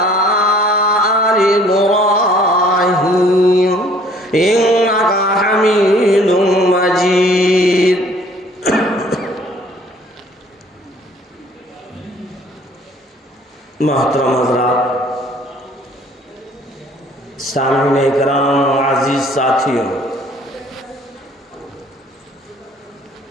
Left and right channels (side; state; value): both; normal; correlation 0.57